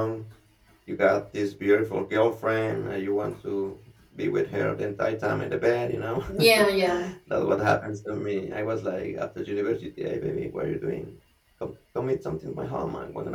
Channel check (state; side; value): identical; both; correlation 1.00